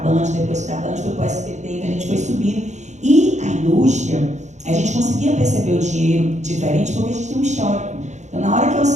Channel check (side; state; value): left; late; 0.34 ms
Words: depois da Band foi para o SBT, então a gente foi subindo. E a indústria, a gente conseguia perceber o dinheiro diferente porque a gente tem um histórico. Então, na hora que eu